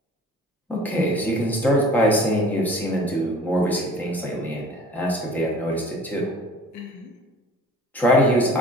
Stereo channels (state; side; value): normal; both; correlation 0.47